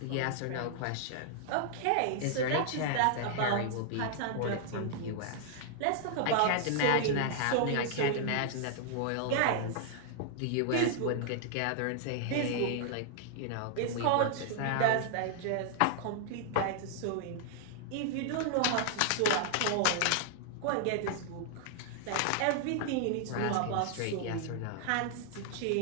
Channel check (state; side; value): different; both; correlation -0.01